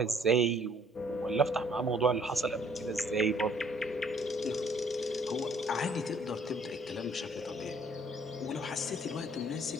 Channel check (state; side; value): normal; both; correlation 0.61